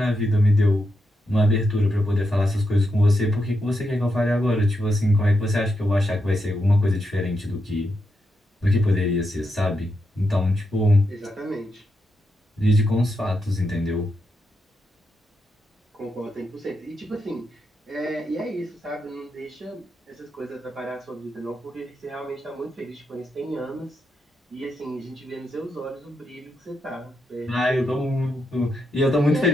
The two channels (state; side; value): normal; both; correlation 0.84